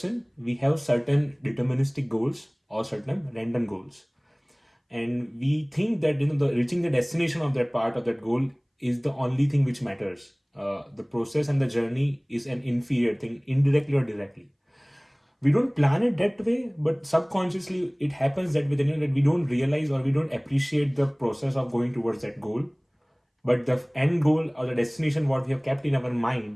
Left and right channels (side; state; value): both; identical; correlation 1.00